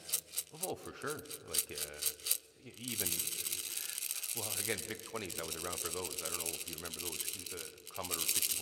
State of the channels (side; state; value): both; identical; correlation 1.00